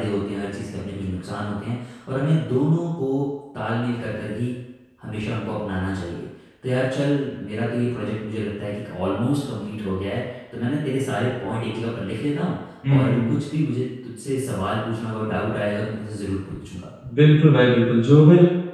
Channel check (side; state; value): both; identical; correlation 1.00